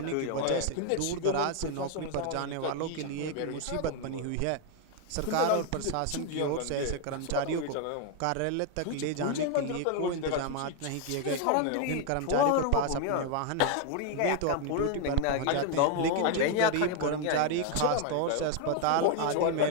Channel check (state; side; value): different; both; correlation 0.00